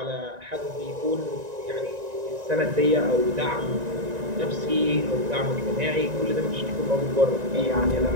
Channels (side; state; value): left; late; 1.9 ms